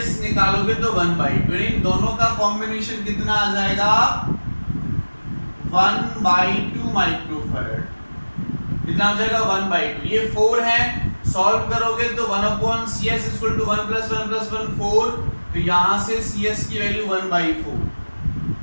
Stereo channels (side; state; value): both; inverted; correlation -1.00